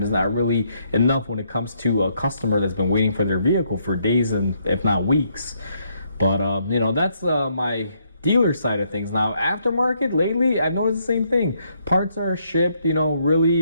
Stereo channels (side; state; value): both; inverted; correlation -0.73